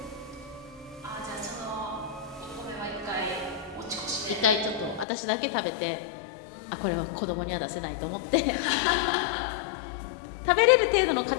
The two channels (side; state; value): right; drops out; at 5.1 s